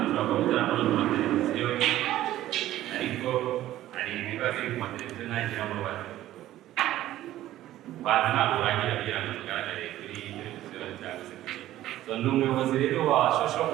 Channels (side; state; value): left; quieter; 14.1 dB